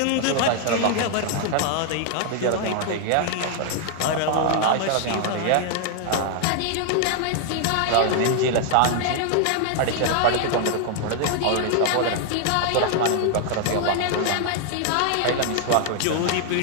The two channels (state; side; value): different; both; correlation 0.00